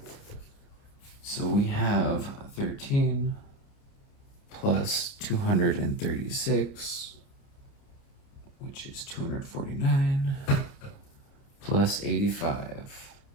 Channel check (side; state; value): right; late; 30 ms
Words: So we have 13 plus 236, which is 249, plus 85,